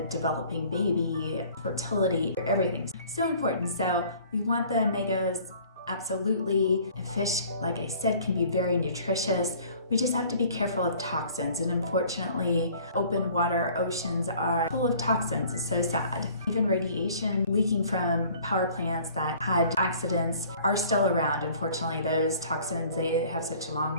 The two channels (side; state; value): both; inverted; correlation -0.52